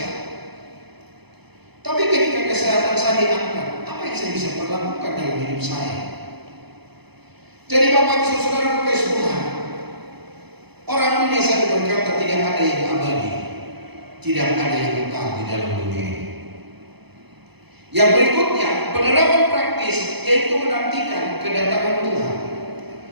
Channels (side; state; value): left; late; 0.98 ms